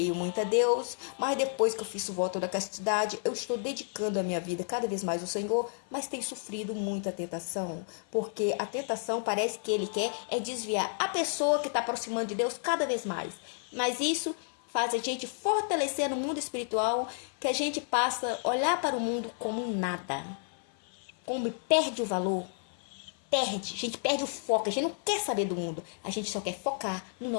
muito a Deus. Mas depois que eu fiz o voto da castidade, eu estou dedicando a minha vida cada vez mais ao Senhor, mas tenho sofrido muita tentação, porque a tentação parece que ele quer desviar a pessoa que está aproximando de Deus cada vez mais. Mas isso faz a gente fortalecer no mundo espiritual, que a gente passa a olhar para o mundo como nada, como perde o valor. A gente perde o foco, a gente não quer saber do mundo, a gente só quer focar no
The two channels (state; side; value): silent; right; 55 dB below the other